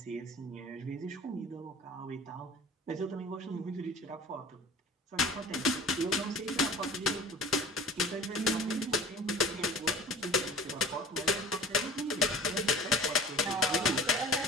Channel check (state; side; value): normal; both; correlation 0.39